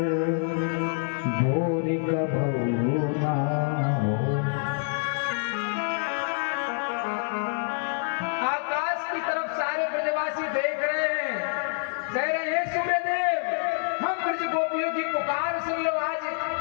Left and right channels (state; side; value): silent; right; digital silence